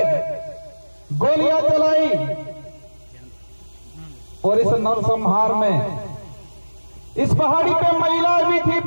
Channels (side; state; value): both; inverted; correlation -1.00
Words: गोलियां चलाई और इस नरसंहार में इस पहाड़ी पे महिला भी थी,